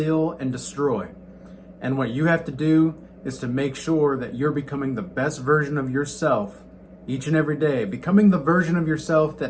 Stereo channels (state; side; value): identical; both; correlation 1.00